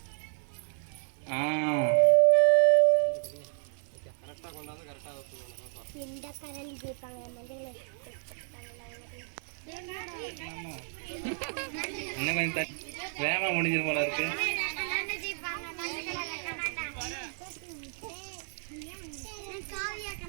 கரெக்டா கொண்டாந்து கரெக்டா ஊத்துவாங்க பாப்பா. இந்த கரண்டி ஜெயிப்பாங்க மஞ்சள் இன்னும் கொஞ்சம் வேகமா முடிஞ்சிரு போல இருக்கு.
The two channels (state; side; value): silent; left; 57 dB below the other